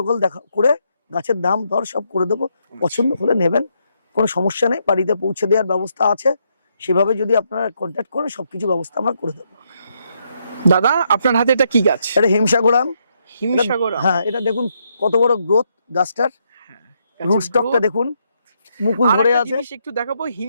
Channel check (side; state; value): both; inverted; correlation -0.77